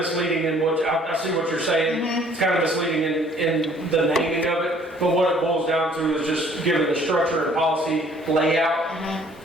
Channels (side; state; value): both; normal; correlation 0.57